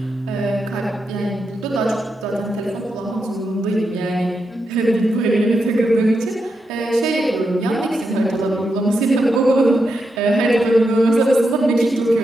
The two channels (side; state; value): both; normal; correlation 0.85